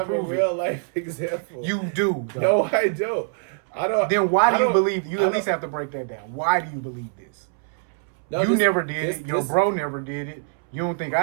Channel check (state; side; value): silent; left; 63 dB below the other